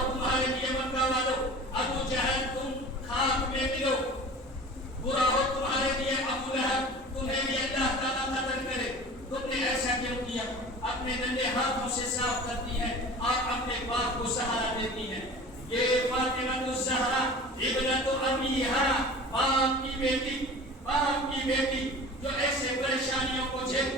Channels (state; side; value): normal; both; correlation 0.39